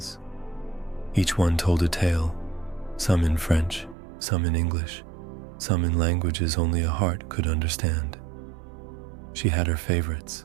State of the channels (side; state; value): left; drops out; at 4.0 s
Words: Each one told a tale, some in French, some in English, some in languages only a heart could understand. She had her favorites: